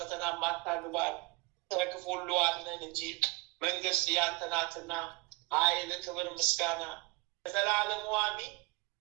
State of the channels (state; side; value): quieter; left; 26.4 dB